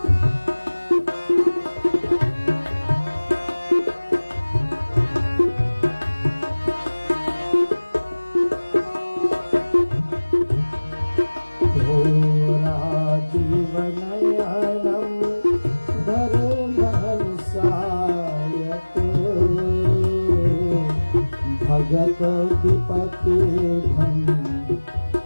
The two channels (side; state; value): both; inverted; correlation -1.00